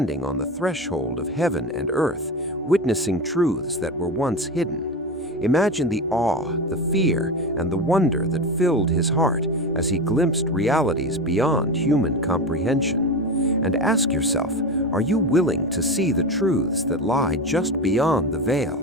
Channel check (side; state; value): both; normal; correlation 0.23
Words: on the threshold of heaven and earth, witnessing truths that were once hidden. Imagine the awe, the fear, and the wonder that filled his heart as he glimpsed realities beyond human comprehension. And ask yourself, are you willing to see the truths that lie just beyond the veil,